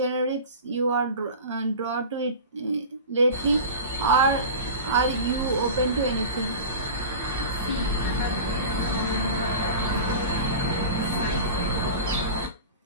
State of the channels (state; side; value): inverted; both; correlation -0.32